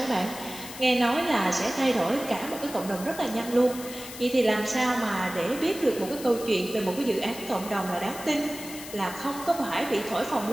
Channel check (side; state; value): left; noise; hiss, 12 dB below the sound